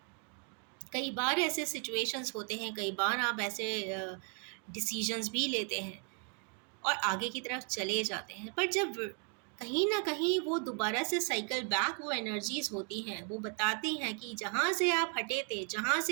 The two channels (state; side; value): quieter; left; 36.3 dB